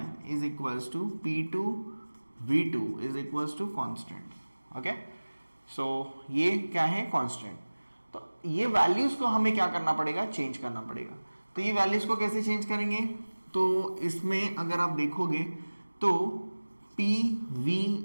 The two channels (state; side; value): inverted; both; correlation -1.00